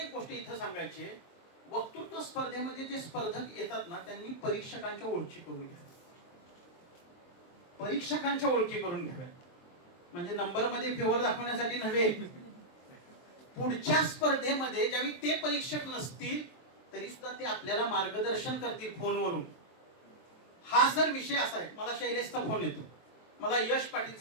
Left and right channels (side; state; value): right; late; 23 ms